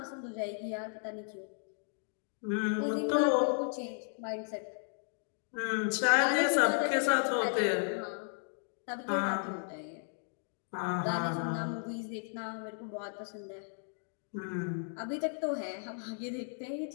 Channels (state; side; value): silent; right; 55 dB below the other